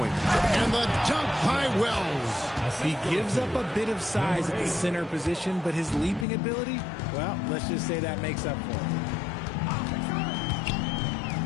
And the dunk by Wells. He gives up a bit of size at the center position, but his leaping ability, well, let's just say that makes up for it.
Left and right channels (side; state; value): right; drops out; at 6.2 s